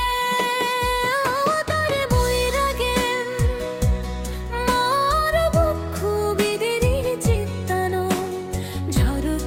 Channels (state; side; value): identical; both; correlation 1.00